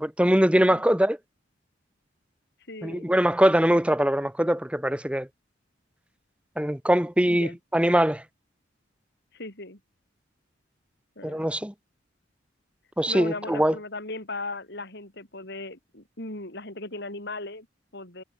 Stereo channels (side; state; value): both; normal; correlation 0.91